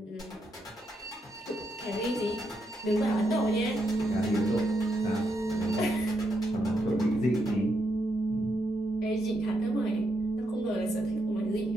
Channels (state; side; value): normal; both; correlation 0.80